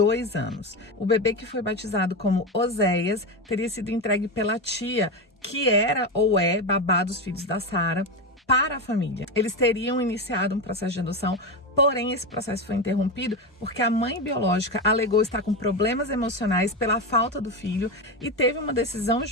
anos. O bebê, que foi batizado como Oséias, teria sido entregue pela tia, que era ou é babá dos filhos da Sara, para a família. Eles teriam iniciado um processo de adoção, porém esse processo foi interrompido porque a mãe biológica alegou estar com problemas emocionais pela falta do filho e teve uma decisão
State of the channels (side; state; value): both; normal; correlation 0.16